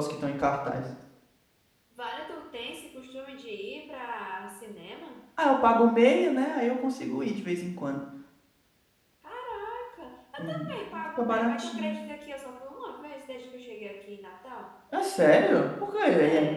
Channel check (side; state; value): both; identical; correlation 1.00